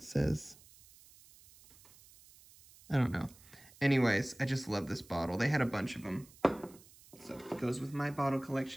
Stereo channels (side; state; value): right; noise; hiss, 24 dB below the sound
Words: says, I don't know. Anyways, I just love this bottle. They had a bunch of them. So it goes with my bottle